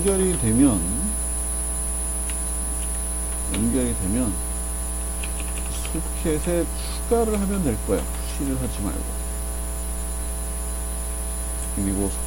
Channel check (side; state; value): left; noise; hum, 15 dB below the sound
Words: 되면 소켓에 추가를 하면 될 거예요. 푸시를 하지 말고. 그리고